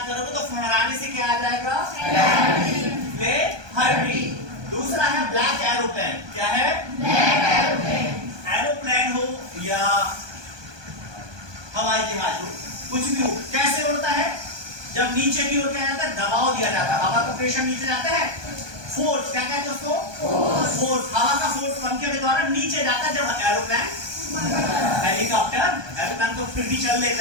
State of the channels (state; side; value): late; left; 1.2 ms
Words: करोगे तो फहराने से क्या आ जाएगा? फ्ले हर्टिंग। दूसरा है ब्लैक एरोप्लेन। क्या है? एरोप्लेन हो या हवाई जहाज हो, कुछ भी हो, कैसे उड़ता है? जब नीचे की ओर क्या जाता है? दबाव दिया जाता है, हवा का प्रेशर नीचे जाता है, फोर्स। क्या कहते हैं उसको? फोर्स। हवा का फोर्स पंखे के द्वारा नीचे जाता है। जब एरोप्लेन, हेलीकॉप्टर, एरोप्लेन तो फिर भी चल